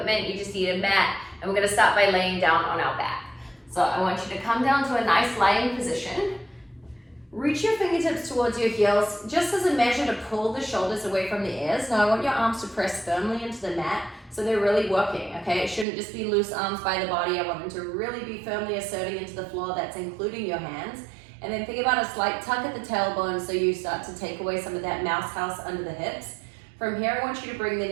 you just need a mat, and we're going to start by laying down on our back. So I want you to come down to a nice lying position. Reach your fingertips towards your heels, just as a measure to pull the shoulders away from the ears. Now I want your arms to press firmly into the mat so they're really working, okay? It shouldn't just be loose arms by the body. I want them to really be firmly asserting into the floor. That's including your hands. And then think about a slight tuck at the tailbone so you start to take away some of that mouse house under the hips. From here, I want you to bring the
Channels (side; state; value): left; drops out; at 15.9 s